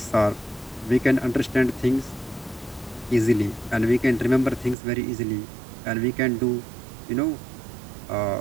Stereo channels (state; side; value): drops out; left; at 4.8 s